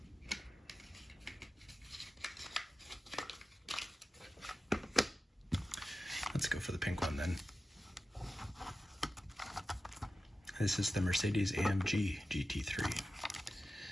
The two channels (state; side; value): normal; both; correlation 0.93